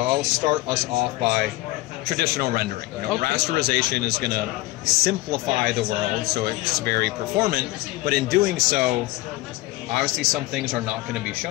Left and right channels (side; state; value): right; quieter; 19.3 dB